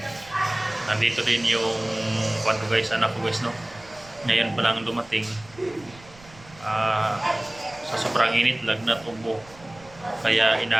nandito din yung kwarto guys, anak ko guys. No? Ngayon pa lang dumating. Sa sobrang init, lagnat, ubo. Kaya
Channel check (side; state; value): right; noise; rumble, 23 dB below the sound